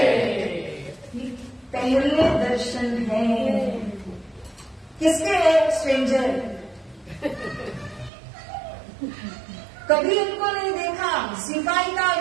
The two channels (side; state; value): left; drops out; at 8.1 s